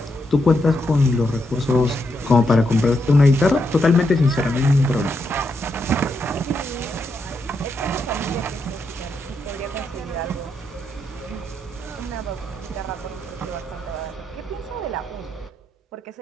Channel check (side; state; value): both; normal; correlation 0.81